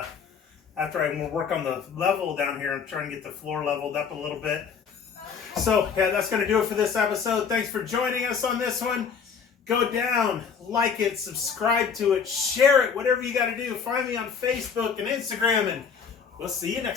after I work on the level down here, I'm trying to get the floor leveled up a little bit. So, yeah, that's going to do it for this episode. Thanks for joining us on this one. Go down, like it, subscribe to it, share it, whatever you got to do. Find me on Facebook and Instagram, and we'll see you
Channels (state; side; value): quieter; right; 6.4 dB